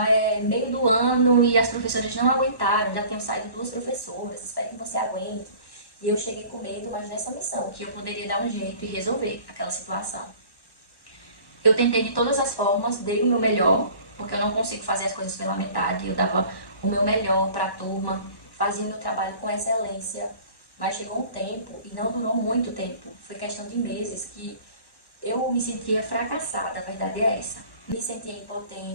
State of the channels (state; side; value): late; right; 1.1 ms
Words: é meio do ano e as professoras não aguentaram, já tinham saído duas professoras, espero que você aguente. E eu cheguei com medo, mas nessa missão, que eu poderia dar um jeito e resolver aquela situação. Eu tentei de todas as formas, dei o meu melhor, porque eu não consigo fazer as coisas pela metade. Eu dava o meu melhor para a turma, fazia meu trabalho com excelência, mas chegou um tempo, e não durou muito tempo, foi questão de meses, que eu me sentia fracassada, a verdade é essa. Me sentia